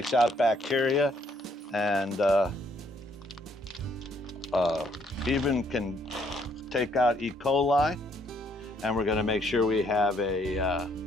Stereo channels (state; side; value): normal; both; correlation 0.68